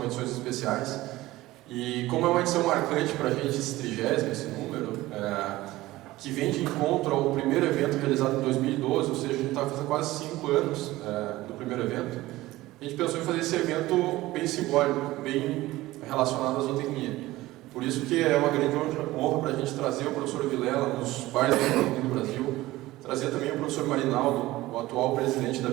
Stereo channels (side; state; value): left; quieter; 17.7 dB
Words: edições especiais. E como é uma edição marcante para a gente, esse 30º, esse número, que vem de encontro ao primeiro evento realizado em 2012, ou seja, a gente está fazendo quase 5 anos do primeiro evento, a gente pensou em fazer esse evento bem simbólico, bem relacionado à zootecnia. Por isso que é uma grande honra para a gente trazer o professor Vilela nos bares da zootecnia do Brasil, trazer também o professor Marinaldo, o atual presidente da